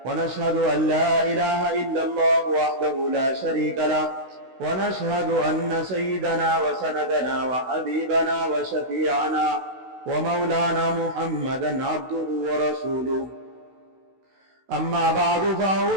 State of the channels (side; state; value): left; late; 16 ms